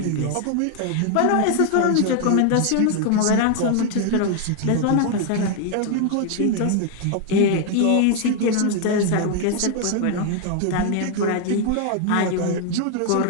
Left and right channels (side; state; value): both; different; correlation 0.00